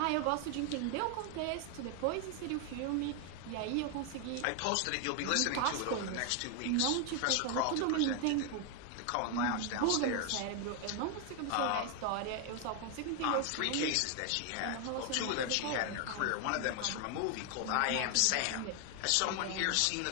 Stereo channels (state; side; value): different; both; correlation 0.01